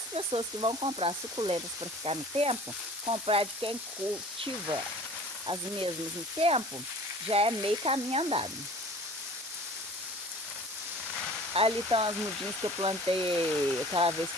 pessoas que vão comprar suculentas para ficar no tempo, comprar de quem cultiva as mesmas no tempo, já é meio caminho andado. Ali estão as mudinhas que eu plantei aquela vez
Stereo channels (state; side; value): noise; right; hiss, 11 dB below the sound